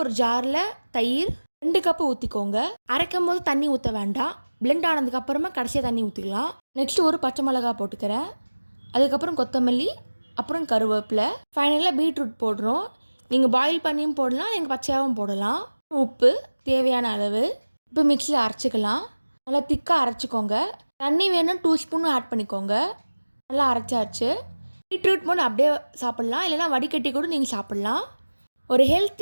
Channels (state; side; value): inverted; both; correlation -1.00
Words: ஒரு ஜாரில் தயிர் 2 கப்பு ஊற்றிக்கோங்க. அரைக்கும் போது தண்ணி ஊற்ற வேண்டாம். பிளெண்ட் ஆனதுக்கப்புறமா கடைசியாக தண்ணி ஊற்றிக்கலாம். நெக்ஸ்ட்டு ஒரு பச்சை மிளகா போட்டுக்கிறேன். அதுக்கப்புறம் கொத்தமல்லி, அப்புறம் கருவேப்பிலை, ஃபைனலாக பீட்ரூட் போடுறோம். நீங்கள் பாயில் பண்ணியும் போடலாம், நீங்கள் பச்சையாகவும் போடலாம். உப்பு தேவையான அளவு. இப்போ மிக்ஸியில் அரைச்சிக்கலாம். நல்லா திக்காக அரைச்சிக்கோங்க. தண்ணி வேணும் 2 ஸ்பூன் ஆட் பண்ணிக்கோங்க. நல்லா அரைச்சாச்சு. பீட்ரூட் மோர் அப்படியே சாப்பிட்லாம், இல்லைனா வடிகட்டி கூட நீங்கள் சாப்பிட்லாம். ஒரு